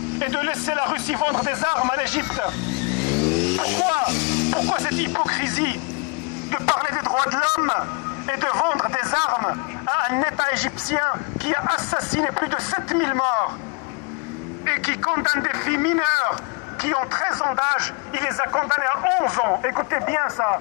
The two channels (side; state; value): right; quieter; 32.3 dB